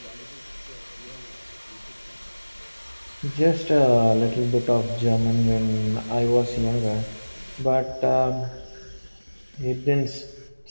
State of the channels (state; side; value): inverted; both; correlation -1.00